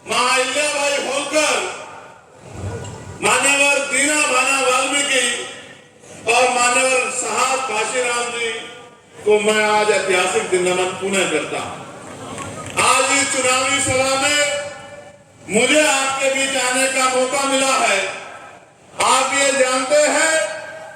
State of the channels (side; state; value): both; identical; correlation 1.00